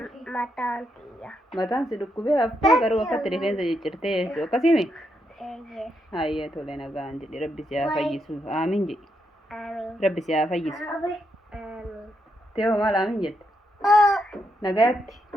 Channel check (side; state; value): both; normal; correlation 0.80